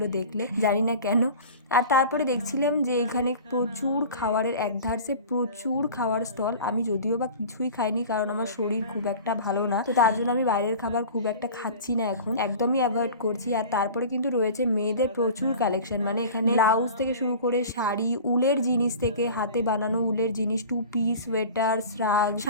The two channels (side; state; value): both; inverted; correlation -0.38